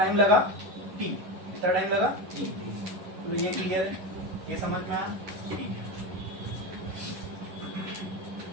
लगा t, कितना टाइम लगा t। तो ये क्लियर है, ये समझ में आया? ठीक है।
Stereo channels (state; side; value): late; left; 11 ms